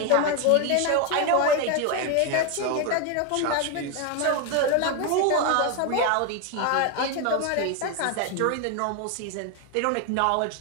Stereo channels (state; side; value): different; both; correlation 0.01